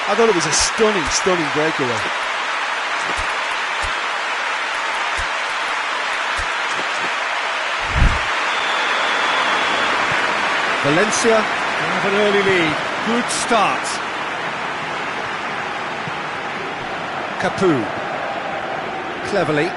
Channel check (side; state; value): both; identical; correlation 1.00